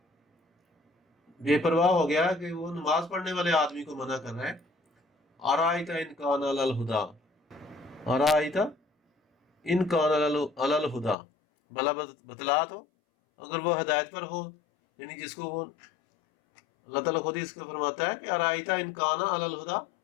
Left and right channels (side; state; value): right; drops out; at 11.2 s